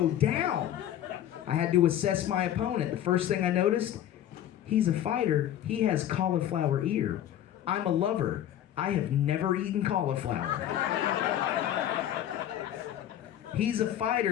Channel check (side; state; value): right; quieter; 11.4 dB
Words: down. I had to assess my opponent. The first thing I noticed, he's a fighter. He has cauliflower ear. I'm a lover. I have never eaten cauliflower. He's a